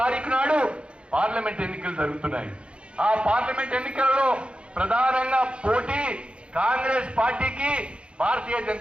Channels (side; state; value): left; late; 0.057 ms